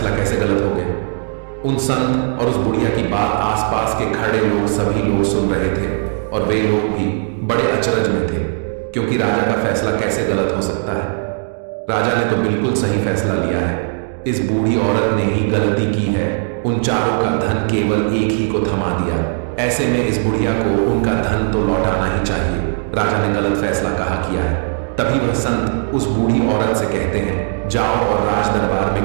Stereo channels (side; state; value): left; silent; 62 dB below the other